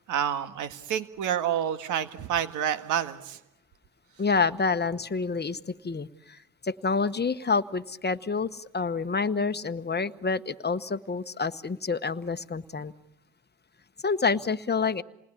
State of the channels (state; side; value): normal; both; correlation -0.01